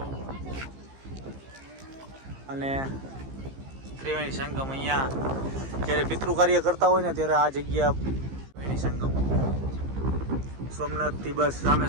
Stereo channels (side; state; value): left; late; 15 ms